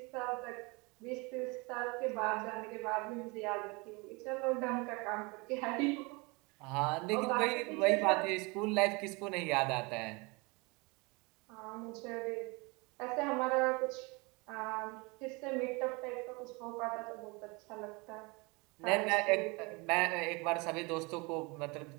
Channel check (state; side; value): quieter; left; 27.5 dB